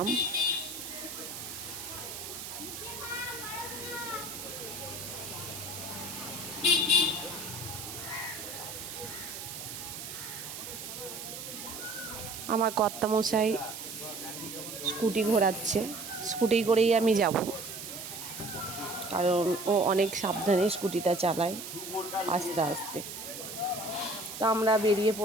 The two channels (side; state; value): right; noise; hiss, 9 dB below the sound